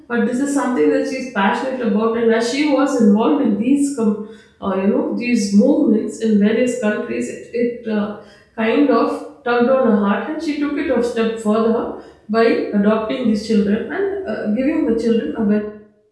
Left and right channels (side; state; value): both; identical; correlation 1.00